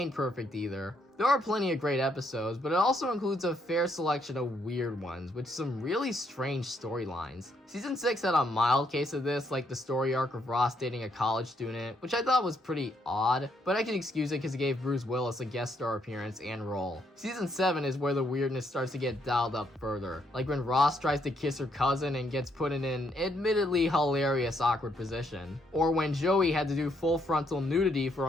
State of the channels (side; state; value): both; normal; correlation 0.74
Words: perfect either. There are plenty of great episodes, but it also includes a fair selection of weird ones, with some really strange storylines. Season 6 had a mild case of this, like the story arc of Ross dating a college student, which I thought was pretty odd, but I can excuse it because it gave Bruce Willis a guest star appearance and role. Season 7 is where the weirdness starts to get dialed up further, like when Ross tries to kiss her cousin and gets put in an admittedly hilarious awkward position, or when Joey had to do full frontal nudity for